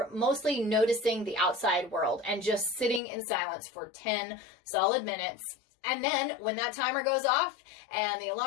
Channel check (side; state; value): right; drops out; at 3.0 s